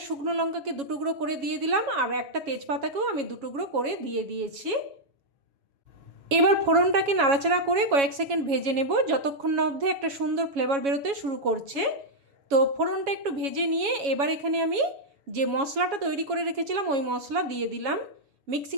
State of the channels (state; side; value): late; left; 7.2 ms